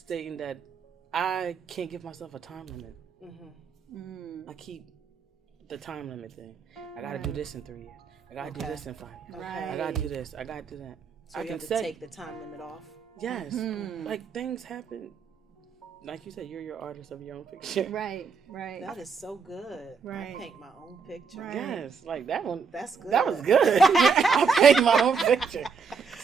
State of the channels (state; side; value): quieter; left; 5.6 dB